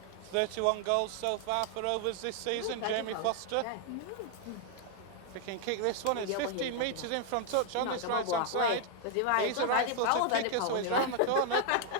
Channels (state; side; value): different; both; correlation 0.00